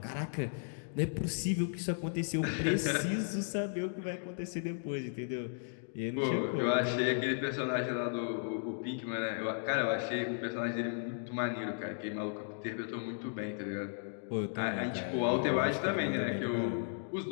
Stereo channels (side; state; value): right; silent; digital silence